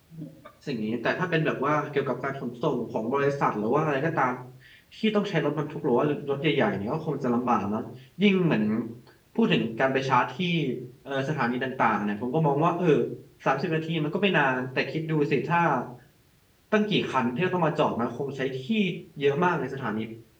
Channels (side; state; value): both; identical; correlation 1.00